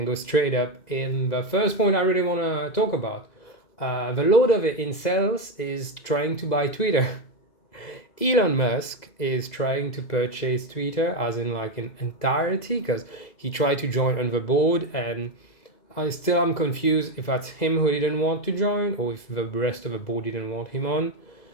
go straight up in the first point I really want to talk about. The load of the incels is trying to buy Twitter. Elon Musk is trying to purchase Twitter, as in in entirety, because he tried to join on the board, and I still am confused if that's him who didn't want to join or if the rest of the board didn't want him on,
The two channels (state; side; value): late; right; 2.0 ms